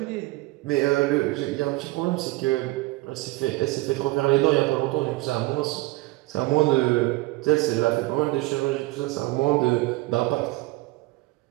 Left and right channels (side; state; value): left; quieter; 20.6 dB